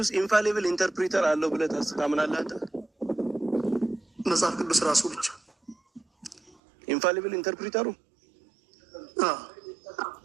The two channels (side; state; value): left; drops out; at 6.6 s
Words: ኢንፋሊብል ኢንተርፕሪተር አለው ብለህ ታምናለህ አንተ? መጽሐፍ ቅዱስ ራሱ ብቻ ኢንፋሊብል ኢንተርፕሪተሩ